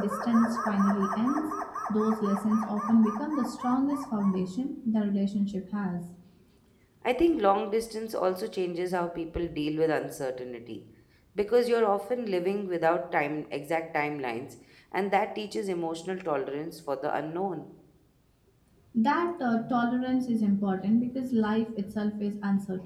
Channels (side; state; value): both; identical; correlation 1.00